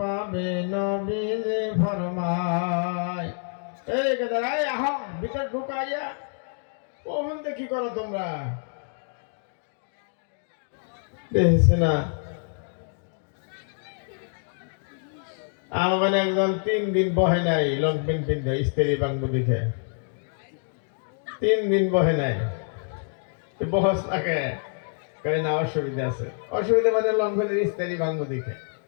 নবীজি ফরমায়। এই গেদারাই আহ ভিতর ঢুকাইয়া কখন দেখি করো তোমরা দেখছি না। আমার একজন 3 দিন বহে নাই লং প্যান্ট পিন্ধে স্ত্রী বাংবু দেখে 3 দিন বহে নাই বহস থাকে কই না অসুবিধা আছে। অসুবিধা মানে লং প্যান্টের স্ত্রী বাংবু দেখে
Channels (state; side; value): silent; right; 60 dB below the other